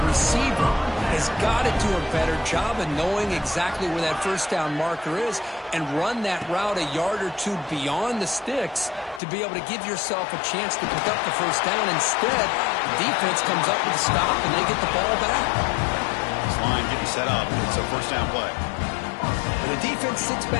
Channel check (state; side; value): drops out; right; at 9.2 s